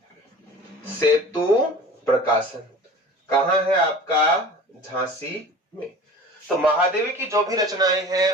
सेतु प्रकाशन। कहां है आपका, झांसी में। तो महादेवी की जो भी रचनाएं हैं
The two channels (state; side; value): normal; both; correlation 0.40